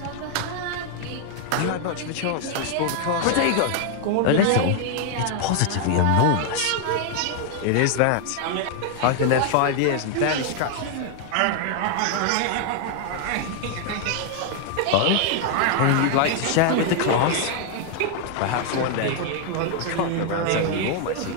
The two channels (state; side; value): different; both; correlation 0.00